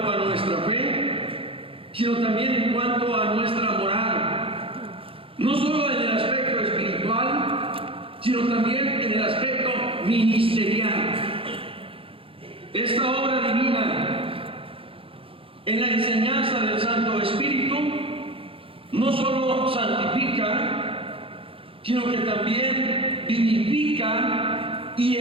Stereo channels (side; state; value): left; late; 0.27 ms